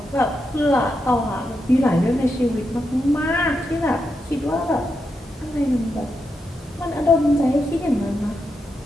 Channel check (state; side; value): normal; both; correlation 0.85